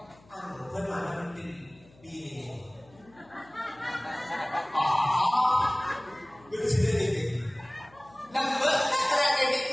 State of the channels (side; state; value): left; noise; hum, 27 dB below the sound